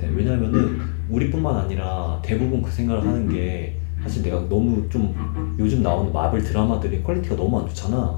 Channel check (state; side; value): silent; right; 59 dB below the other